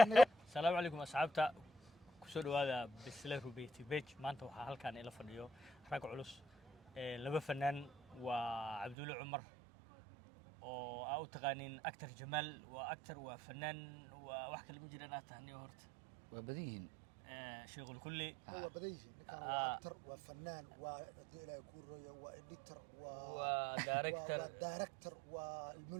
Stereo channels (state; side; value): drops out; left; at 9.0 s